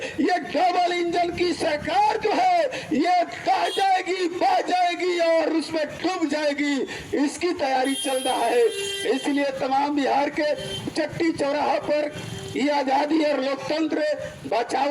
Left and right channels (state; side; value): identical; both; correlation 1.00